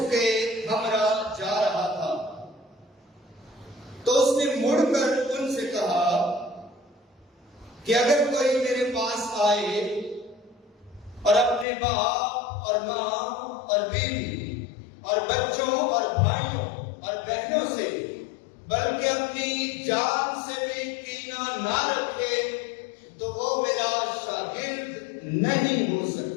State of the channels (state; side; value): drops out; right; at 11.7 s